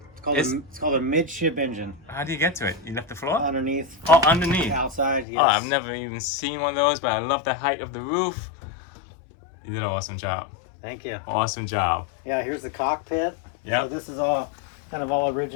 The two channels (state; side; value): drops out; right; at 5.2 s